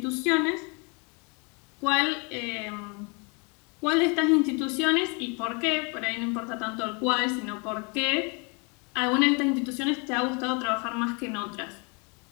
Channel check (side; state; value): right; quieter; 32.5 dB